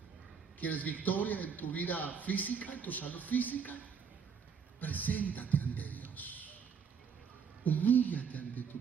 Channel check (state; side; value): quieter; left; 6.4 dB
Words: ¿Quieres victoria en tu vida física, en tu salud física? Preséntate ante Dios. Humíllate